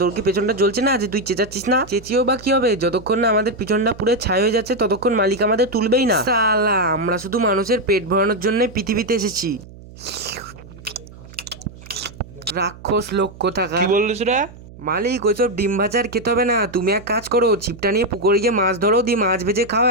তোর কি পেছনটা জ্বলছে না যে তুই চেঁচাচ্ছিস না? চেঁচিয়েও বা কি হবে, যতক্ষণ না আমাদের পিছনটা পুরো ছাই হয়ে যাচ্ছে ততক্ষণ মালিক আমাদের তুলবেই না। শালা আমরা শুধু মানুষের পেট ভরানোর জন্য পৃথিবীতে এসেছি। রাক্ষস লোক কোথাকার। কি বললিস রে? মালিক ওইসব ডিম ভাজার খেতে হবে না, তুমি এক কাজ করো ছিপটা নিয়ে পুকুরে গিয়ে মাছ ধরো, দিয়ে মাছ ভেজে খাও,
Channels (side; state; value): right; noise; hum, 19 dB below the sound